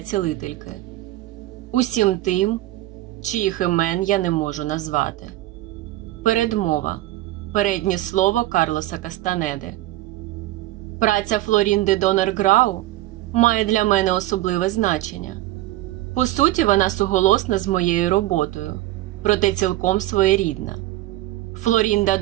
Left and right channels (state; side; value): quieter; left; 16.3 dB